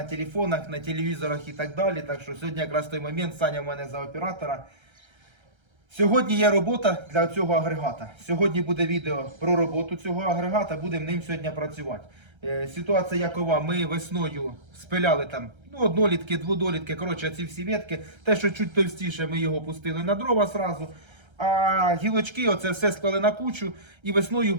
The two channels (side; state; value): left; late; 1.3 ms